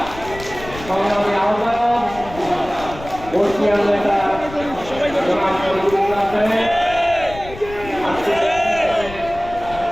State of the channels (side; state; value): left; noise; rumble, 15 dB below the sound